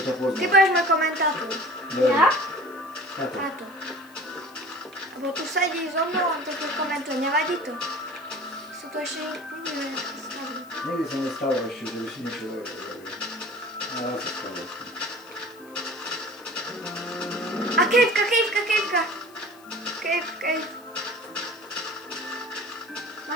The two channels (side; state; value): left; noise; hiss, 26 dB below the sound